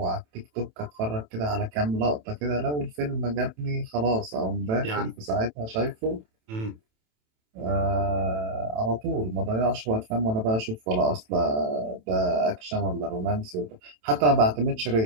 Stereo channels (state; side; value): late; left; 27 ms